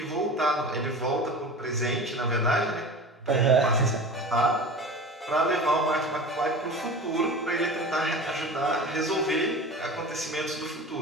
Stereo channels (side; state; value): both; normal; correlation 0.34